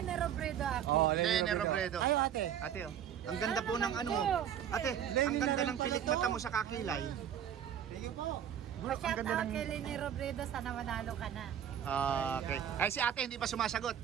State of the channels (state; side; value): quieter; left; 9.5 dB